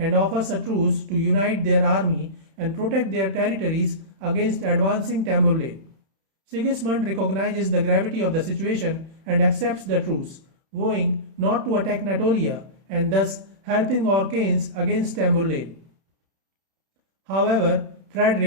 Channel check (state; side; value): late; left; 31 ms